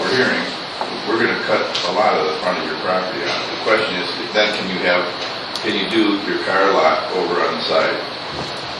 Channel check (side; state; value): both; identical; correlation 1.00